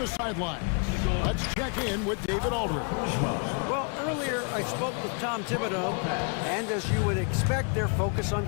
sidelines, let's check in with David Aldridge. Well, earlier I spoke with Tom Thibodeau, and as you would expect, their focus on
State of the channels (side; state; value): right; quieter; 37.8 dB